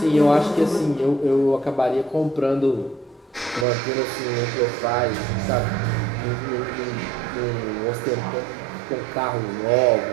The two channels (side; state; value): left; drops out; at 3.7 s